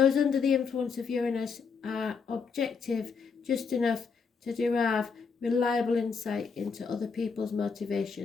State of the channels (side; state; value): right; quieter; 5.5 dB